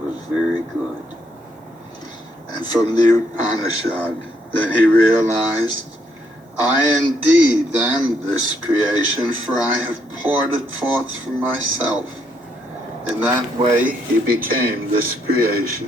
very good. And from the Upanishad, then he realized I indeed am this creation, for I have poured it forth from myself. In that way he became this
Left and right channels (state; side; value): normal; both; correlation 0.73